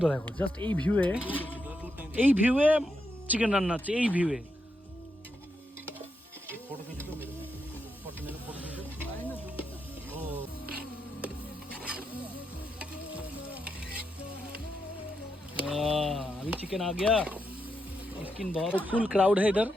দেখো, জাস্ট এই ভিউয়ে চিকেন রান্না হচ্ছে, এই ভিউয়ে। अभी चिकन आ गया, स्किन बहुत फुल क्राउड है इधर।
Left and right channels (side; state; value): both; normal; correlation 0.83